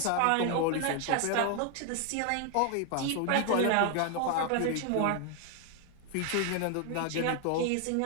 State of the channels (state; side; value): different; both; correlation 0.01